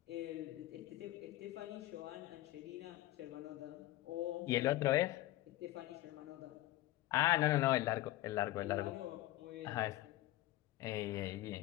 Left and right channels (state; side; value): quieter; right; 16.5 dB